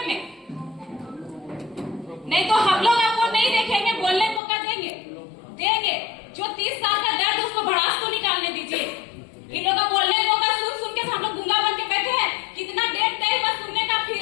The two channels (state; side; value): drops out; right; at 4.4 s